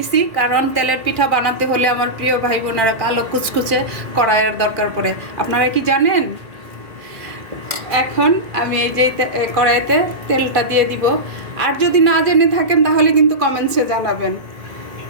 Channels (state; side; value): late; left; 2.4 ms